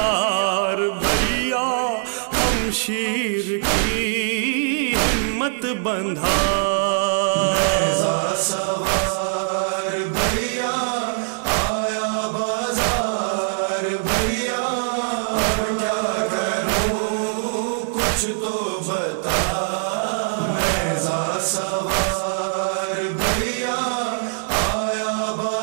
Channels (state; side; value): silent; left; digital silence